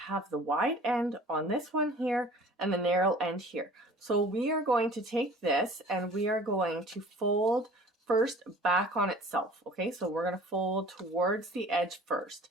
the wide end on this one here and the narrow end here. So we are going to take this and we are going to fold first back on itself. Okay, so we're going to fold towards the edge first.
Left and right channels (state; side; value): normal; both; correlation 0.47